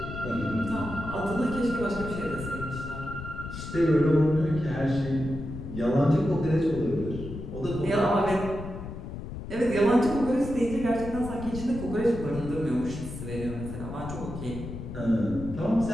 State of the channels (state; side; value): noise; left; rumble, 9 dB below the sound